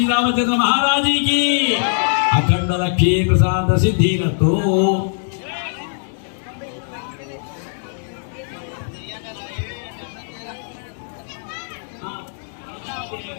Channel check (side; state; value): right; silent; 65 dB below the other